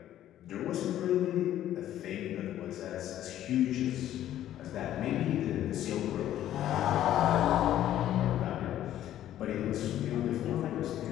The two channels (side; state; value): right; quieter; 12.2 dB